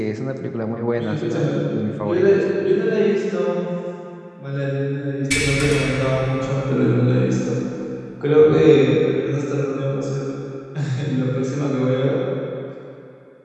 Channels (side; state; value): both; identical; correlation 1.00